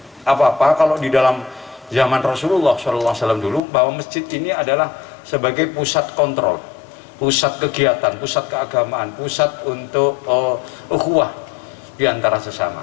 apa-apa. Kalau di dalam zaman Rasulullah SAW dulu, bahwa masjid ini adalah sebagai pusat kontrol, pusat kegiatan, pusat keagamaan, pusat untuk ukhuwah di antara sesama.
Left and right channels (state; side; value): drops out; right; at 3.6 s